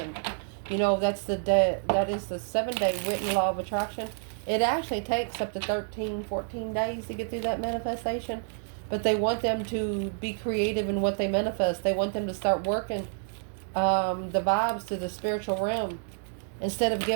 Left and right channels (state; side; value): silent; left; digital silence